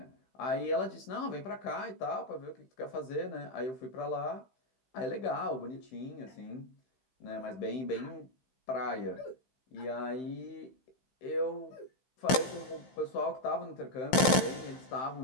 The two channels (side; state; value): right; late; 15 ms